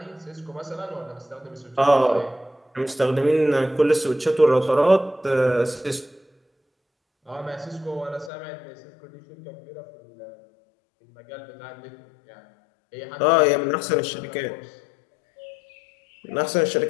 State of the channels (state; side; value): drops out; right; at 8.3 s